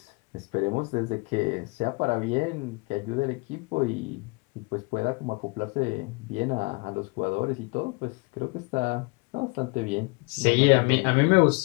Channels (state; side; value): quieter; right; 28.2 dB